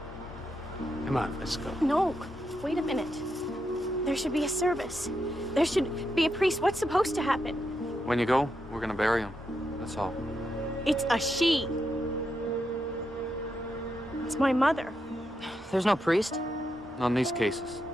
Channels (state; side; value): normal; both; correlation 0.83